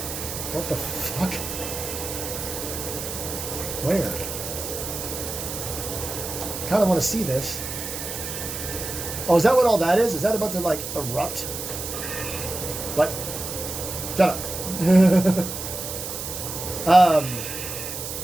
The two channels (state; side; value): noise; right; hiss, 6 dB below the sound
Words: What the fuck? Where? Kind of want to see this. Oh, is that what all that is? Is that about to, like, erupt? What? Shut up.